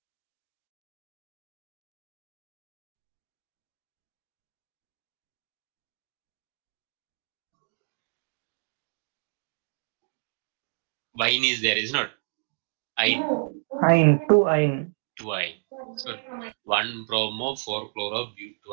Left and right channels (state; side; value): silent; left; 58 dB below the other